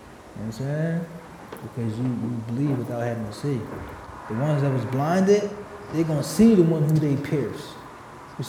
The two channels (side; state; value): both; identical; correlation 1.00